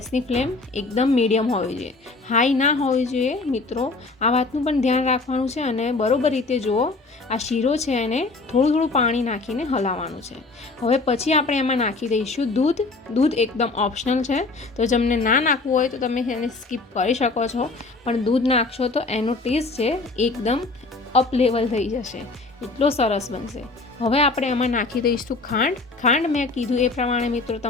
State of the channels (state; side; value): quieter; right; 3.6 dB